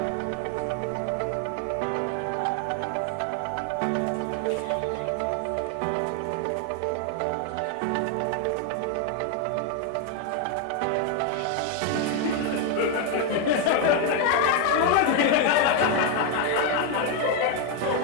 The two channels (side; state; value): both; different; correlation 0.01